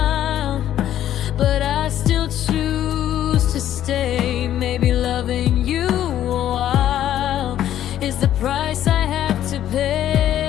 but I still choose to stay. Maybe loving you a while is the price I have to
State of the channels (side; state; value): right; quieter; 11.6 dB